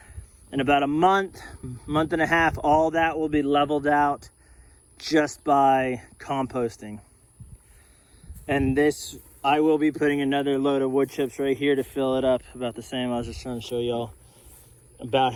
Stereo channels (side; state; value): both; identical; correlation 1.00